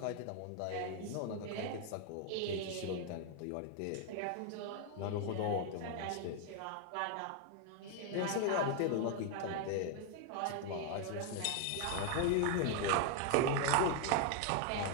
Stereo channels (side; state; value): both; different; correlation 0.00